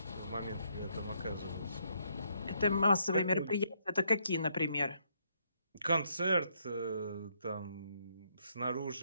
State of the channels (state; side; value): inverted; both; correlation -0.73